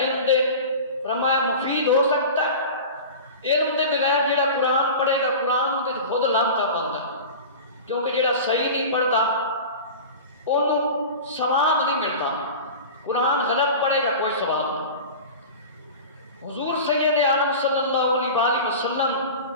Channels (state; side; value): inverted; both; correlation -0.33